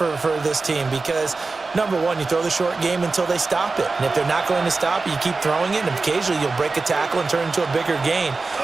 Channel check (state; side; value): quieter; left; 3.9 dB